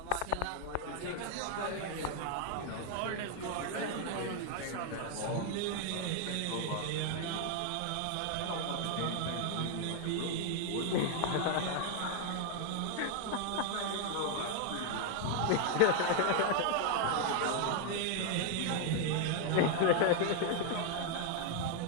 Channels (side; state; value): both; different; correlation 0.00